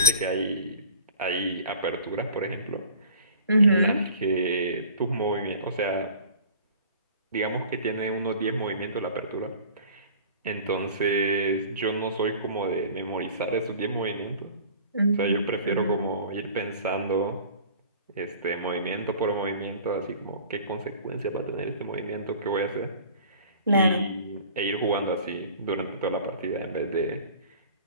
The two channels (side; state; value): both; inverted; correlation -0.45